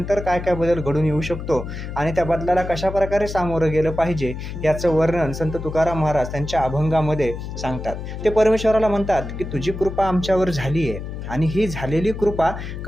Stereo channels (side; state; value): left; noise; hum, 8 dB below the sound